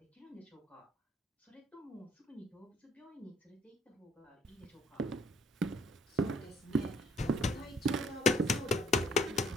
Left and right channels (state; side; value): normal; both; correlation 0.62